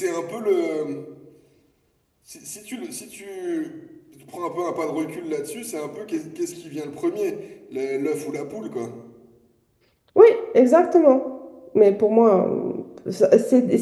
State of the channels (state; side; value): identical; both; correlation 1.00